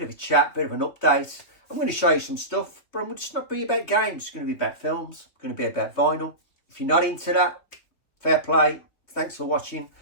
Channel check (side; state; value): right; late; 3.4 ms